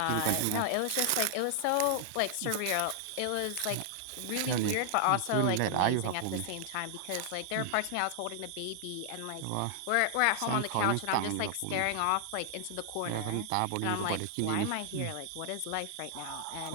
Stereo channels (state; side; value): different; both; correlation 0.00